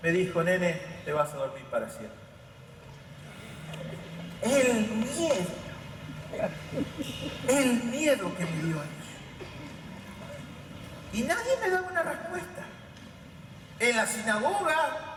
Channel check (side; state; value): both; identical; correlation 1.00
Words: Me dijo: nene, te vas a dormir para siempre. El miedo que me dio eso. Y nadie me daba una respuesta. En la sinagoga,